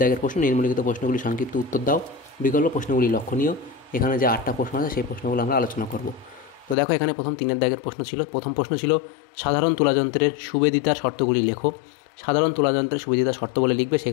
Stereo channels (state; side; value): drops out; right; at 6.8 s